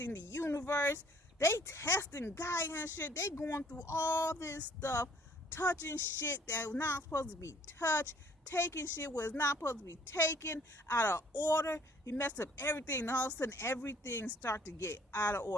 the universe. They testing Gaia and shit. They going through all this stuff, touching shit that was not supposed to be touched, taking shit was not supposed to be taken, out of order. You messed up everything, and all of a sudden everything start to get out of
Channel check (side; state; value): both; normal; correlation 0.59